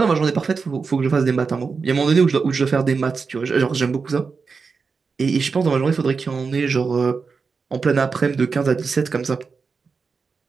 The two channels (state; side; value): quieter; left; 5.0 dB